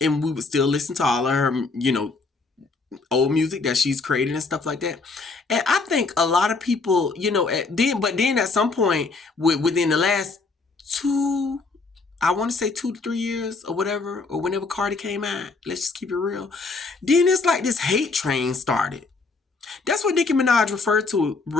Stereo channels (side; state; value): right; quieter; 4.0 dB